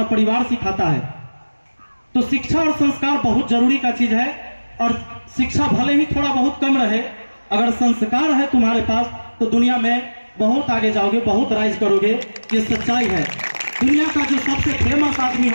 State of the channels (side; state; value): both; inverted; correlation -1.00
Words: परिवार सिखाता है। तो शिक्षा और संस्कार बहुत जरूरी का चीज है। और शिक्षा भले ही थोड़ा बहुत कम रहे, अगर संस्कार है तुम्हारे पास तो दुनिया में बहुत आगे जाओगे, बहुत राइज करोगे। ये सच्चाई है। दुनिया का जो सबसे फेमस आदमी